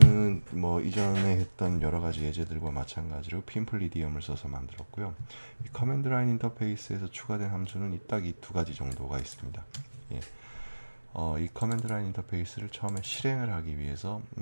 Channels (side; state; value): both; inverted; correlation -1.00